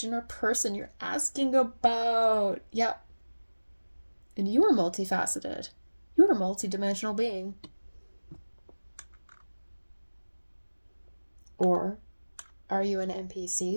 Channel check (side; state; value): both; inverted; correlation -1.00